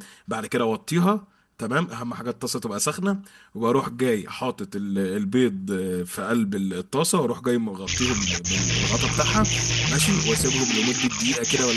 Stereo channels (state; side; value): identical; both; correlation 1.00